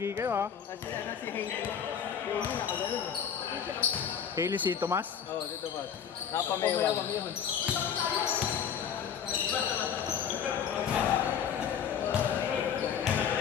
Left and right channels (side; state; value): right; quieter; 7.9 dB